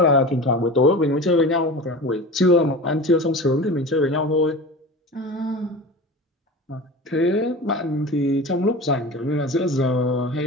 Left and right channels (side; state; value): both; normal; correlation 0.33